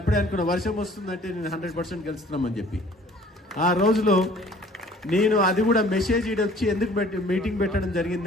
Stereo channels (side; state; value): both; normal; correlation 0.53